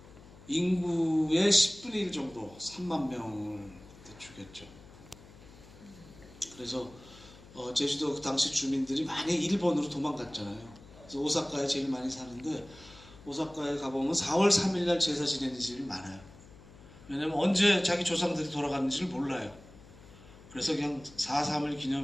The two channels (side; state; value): left; noise; hum, 21 dB below the sound